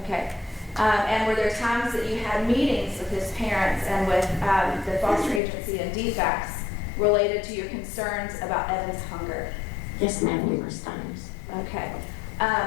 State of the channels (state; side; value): drops out; right; at 5.4 s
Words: And were there times that you had meetings with his parents and with the foster agency and DFACS related to your concerns about Evan's hunger? Yes, ma'am, numerous times. Okay.